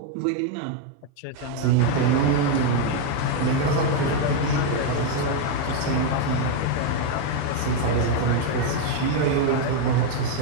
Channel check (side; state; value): both; different; correlation 0.01